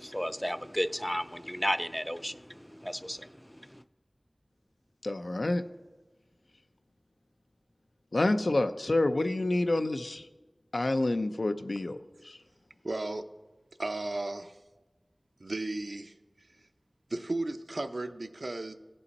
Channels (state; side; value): normal; both; correlation 0.98